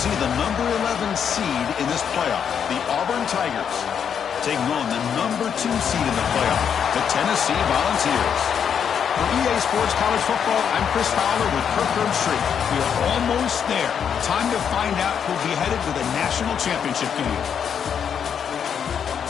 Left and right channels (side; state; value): right; quieter; 7.8 dB